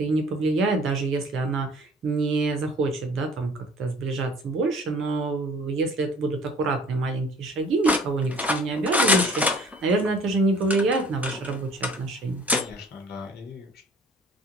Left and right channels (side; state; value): both; normal; correlation 0.51